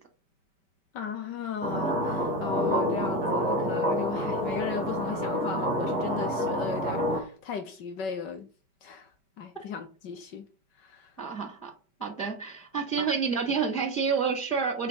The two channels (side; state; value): right; late; 5.0 ms